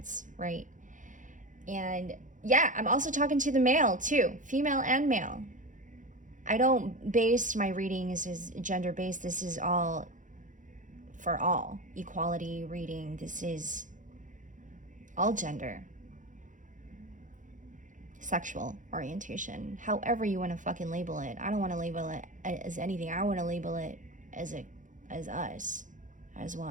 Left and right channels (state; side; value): late; left; 0.37 ms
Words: right? And yeah, I'm also talking to the male too, female and male. I don't base my readings as gender based. This is all for all equality reading. This is all gender, sexual orientation, however you want to fucking label it. I don't want to label it as anything. I want to label it as us, as